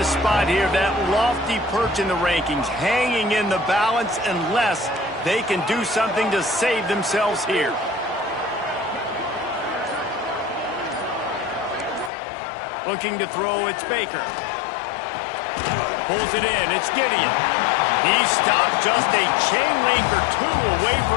spot here, that lofty perch in the rankings, hanging in the balance unless they can do something to save themselves here. Looking to throw, it's Baker. Pulls it in. It's Gideon. He stopped just a chain link or two away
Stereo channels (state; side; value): drops out; right; at 12.1 s